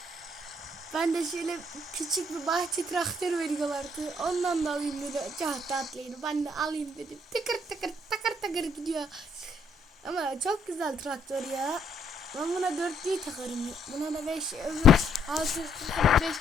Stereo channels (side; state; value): both; normal; correlation 0.69